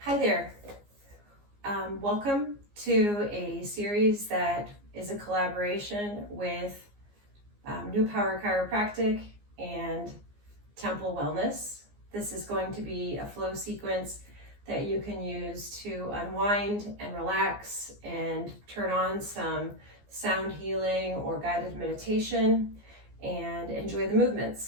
Hi there. Welcome to a series that is a collaboration with New Power Chiropractic and Templ Wellness. This is going to be a flow sequence that you can use to unwind and relax and turn on some sound healing or guided meditation and enjoy the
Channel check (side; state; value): left; late; 15 ms